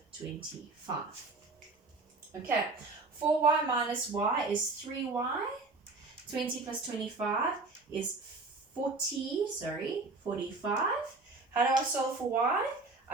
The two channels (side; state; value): left; quieter; 3.6 dB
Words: 25. Okay, 4y minus y is 3y, 20 plus 25 is 45. How do I solve for y?